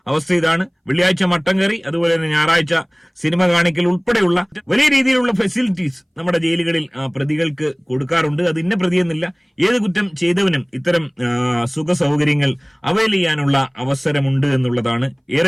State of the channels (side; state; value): both; identical; correlation 1.00